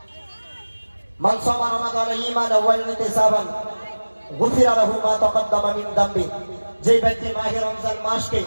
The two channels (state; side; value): inverted; both; correlation -1.00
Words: মান সামা রমাদান ঈমানান ওয়া ইহতিসাবান গুফিরা লাহু মা তাকাদ্দামা মিন যামবি। যে ব্যক্তি মাহে রমজান মাসকে